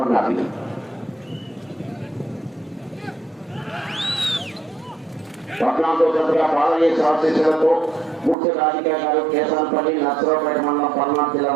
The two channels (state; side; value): drops out; left; at 8.3 s